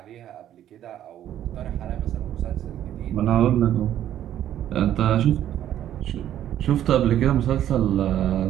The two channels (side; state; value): left; quieter; 11.4 dB